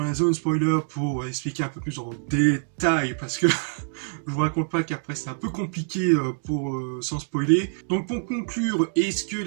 la zone spoiler pour expliquer un peu plus en détail, parce que je vous raconte pas qu'après c'est un peu compliqué pour sans spoiler. Donc pour conclure, est-ce que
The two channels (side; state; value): left; silent; digital silence